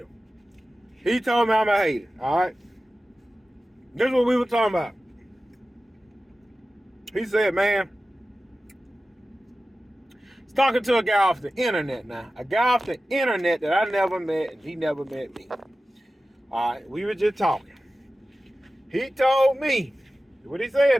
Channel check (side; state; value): both; normal; correlation 0.95